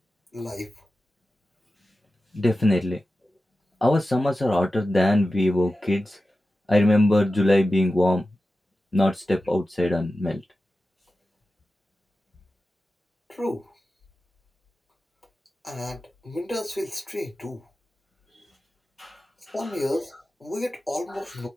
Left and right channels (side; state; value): both; normal; correlation 0.94